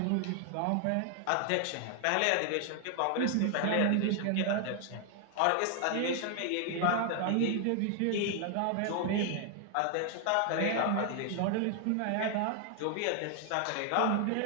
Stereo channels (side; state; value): both; different; correlation 0.00